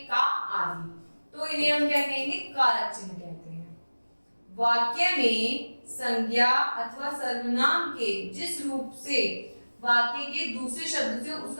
का आदि। तो इन्हें हम क्या कहेंगे? कारक चिन्ह कहते हैं। वाक्य में संज्ञा अथवा सर्वनाम के जिस रूप से वाक्य के दूसरे शब्द से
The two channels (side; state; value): both; inverted; correlation -1.00